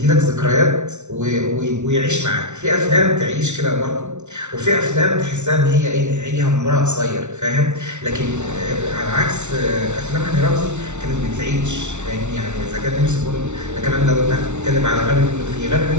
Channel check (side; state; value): left; late; 0.83 ms